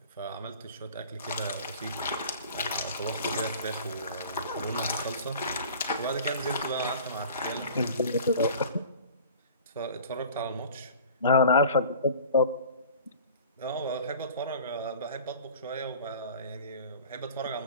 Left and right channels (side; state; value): both; inverted; correlation -0.44